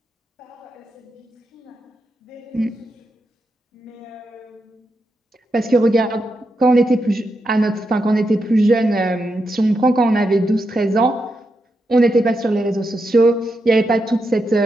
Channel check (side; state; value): both; normal; correlation 0.85